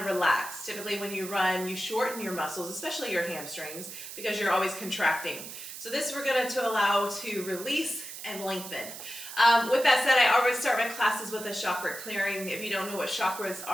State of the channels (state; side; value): noise; right; hiss, 11 dB below the sound